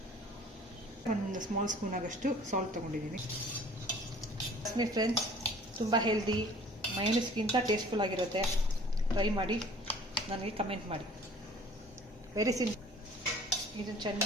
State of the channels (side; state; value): both; normal; correlation 0.50